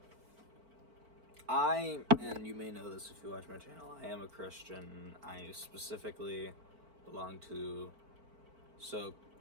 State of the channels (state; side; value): late; left; 4.5 ms